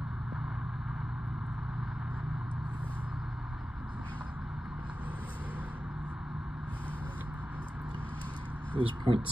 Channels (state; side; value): normal; both; correlation 0.94